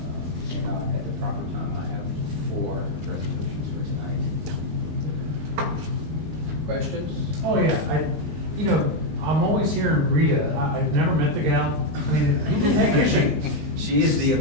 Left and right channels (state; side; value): late; left; 20 ms